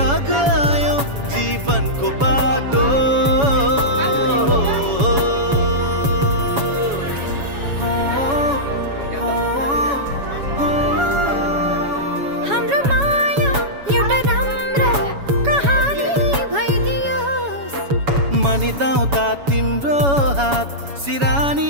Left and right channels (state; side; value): late; left; 7.1 ms